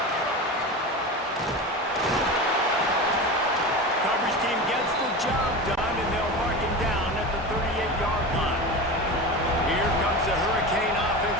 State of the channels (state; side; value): normal; both; correlation 0.27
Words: Coverage team gets the job done, and they'll mark him down at the 38-yard line. Here comes the Hurricane